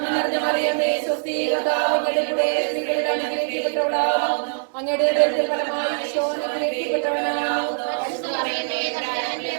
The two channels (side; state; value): left; silent; digital silence